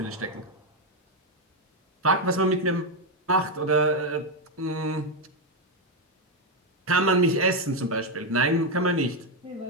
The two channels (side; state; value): both; normal; correlation 0.04